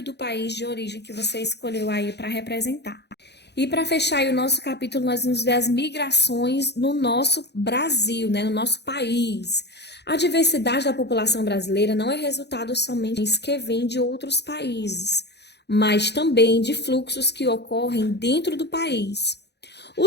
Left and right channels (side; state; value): right; late; 0.49 ms